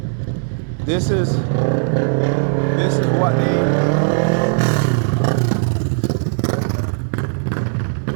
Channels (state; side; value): silent; left; digital silence